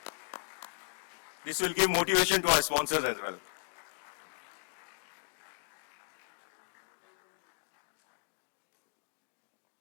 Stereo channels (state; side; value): silent; right; digital silence